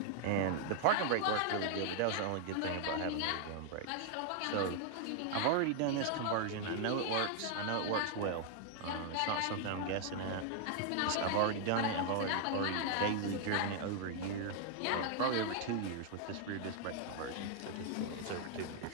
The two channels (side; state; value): both; different; correlation 0.00